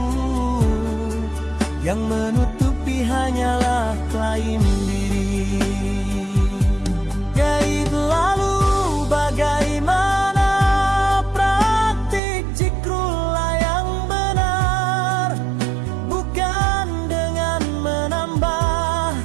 yang menutupi hanyalah klaim diri. Gaib lalu bagaimana praktik zikrullah yang benar? Bukan dengan menambah,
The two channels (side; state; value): left; drops out; at 12.2 s